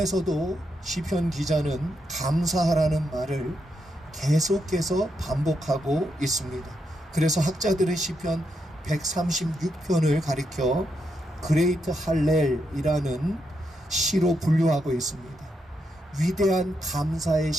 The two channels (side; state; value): both; normal; correlation 0.81